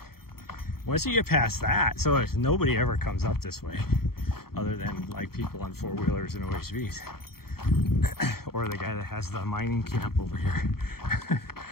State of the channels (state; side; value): late; right; 0.94 ms